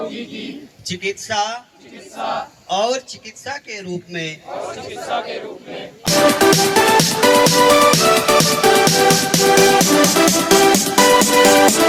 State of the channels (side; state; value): both; identical; correlation 1.00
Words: चिकित्सा और चिकित्सा के रूप में